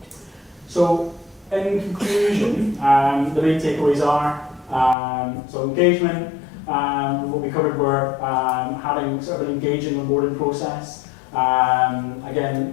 So in conclusion, the main takeaways are, so engagement, what we covered were having sort of an engaging onboarding process.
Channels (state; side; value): drops out; right; at 5.0 s